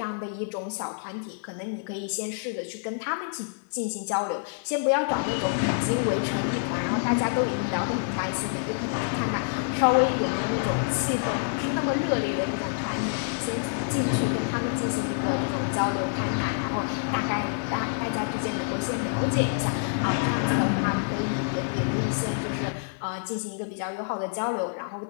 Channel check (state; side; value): silent; right; digital silence